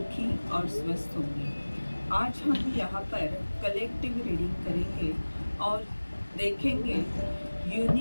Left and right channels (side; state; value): both; inverted; correlation -1.00